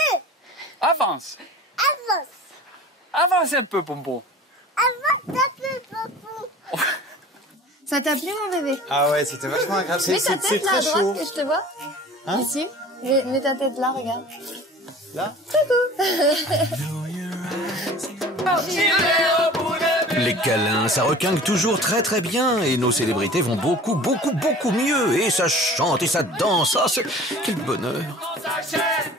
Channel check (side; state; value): both; normal; correlation 0.43